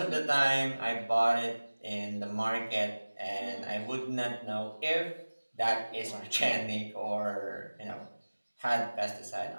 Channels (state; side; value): inverted; both; correlation -1.00